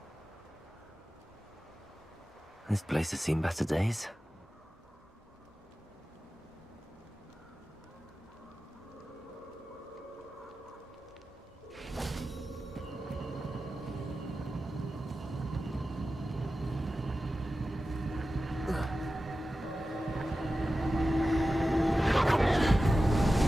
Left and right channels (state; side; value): normal; both; correlation 0.94